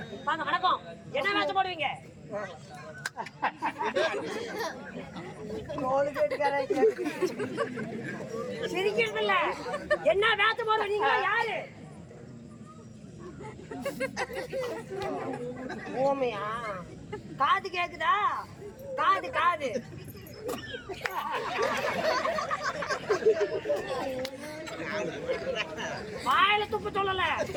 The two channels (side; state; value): both; identical; correlation 1.00